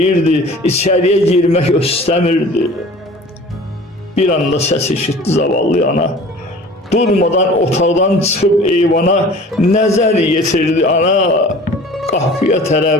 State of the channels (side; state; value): both; normal; correlation 0.44